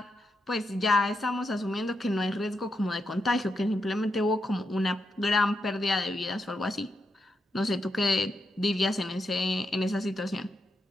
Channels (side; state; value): both; normal; correlation 0.84